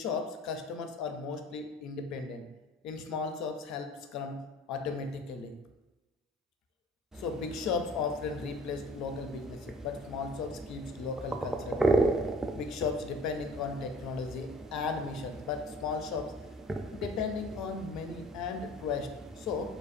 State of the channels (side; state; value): both; normal; correlation 0.50